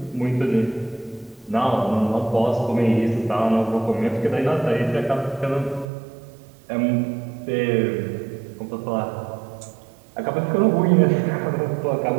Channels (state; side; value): drops out; left; at 5.9 s